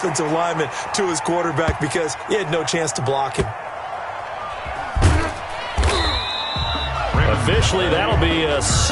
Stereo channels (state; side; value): identical; both; correlation 1.00